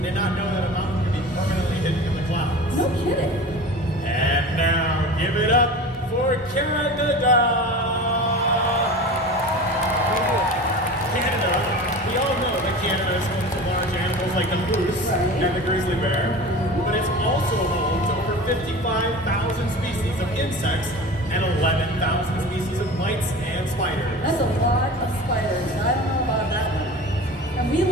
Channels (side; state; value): both; normal; correlation 0.35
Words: Did not know that a mountain could be permanently hidden in the clouds. No kidding. And now, give it up for Canada. Canada, we all know that Canada is home to large animals like the moose and the grizzly bear, but it's also home to over 55,000 species of insects and 11,000 species of mites and spiders. That's a lot of spiders. I don't know about that one. And we